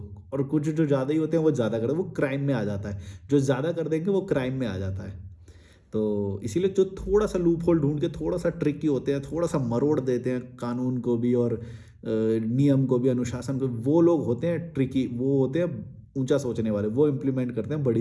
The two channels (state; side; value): identical; both; correlation 1.00